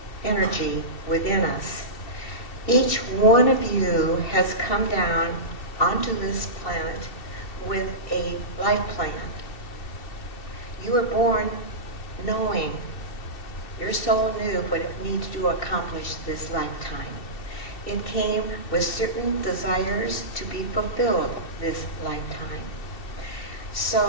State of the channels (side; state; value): right; late; 2.7 ms